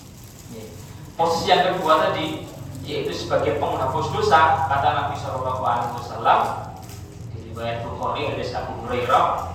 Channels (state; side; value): identical; both; correlation 1.00